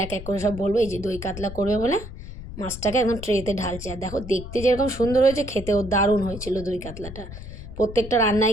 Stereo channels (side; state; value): left; noise; rumble, 12 dB below the sound